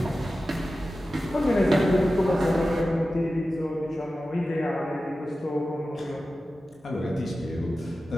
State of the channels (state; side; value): normal; both; correlation 0.94